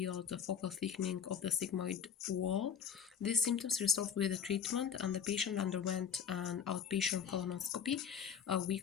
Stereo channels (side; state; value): right; quieter; 7.5 dB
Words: the focal thickening of the sigmoid wall. These symptoms resolved with the treatment, and the patient underwent an outpatient colonoscopy a